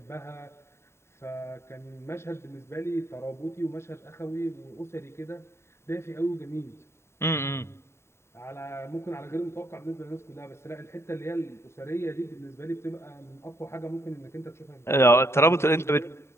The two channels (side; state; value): right; late; 0.13 ms